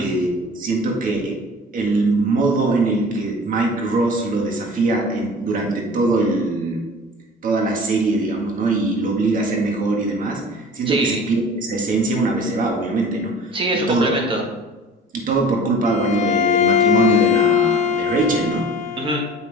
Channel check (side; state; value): both; normal; correlation 0.42